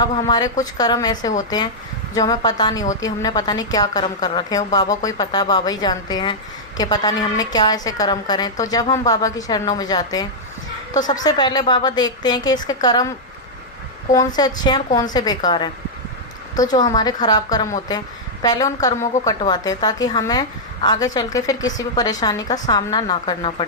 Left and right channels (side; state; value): both; normal; correlation -0.07